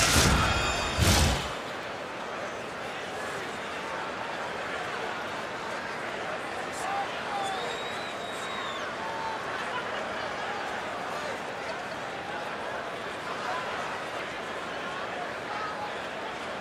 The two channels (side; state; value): both; identical; correlation 1.00